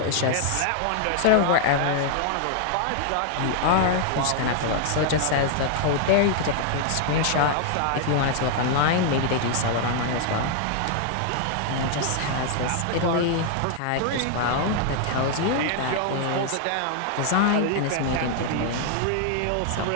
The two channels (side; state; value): both; different; correlation 0.00